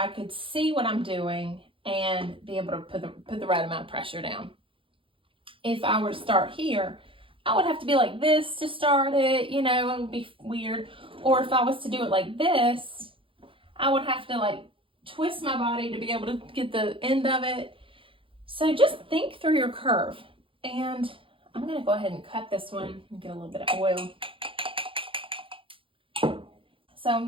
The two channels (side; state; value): left; late; 0.25 ms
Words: could see what I'm doing and be able to put the right amount of pressure down. If I were to start here, I would have to be like this to start it, you know, it would be weird. Or if I was to do it like this, I would have to like twist my body to be able to get the end of it. So just think through your curve. And I'm going to go ahead and cut this one and get a little bit of oil. So I'm